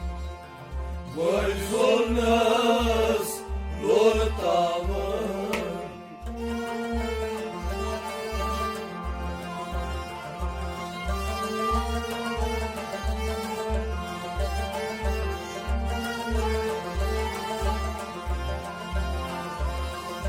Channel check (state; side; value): identical; both; correlation 1.00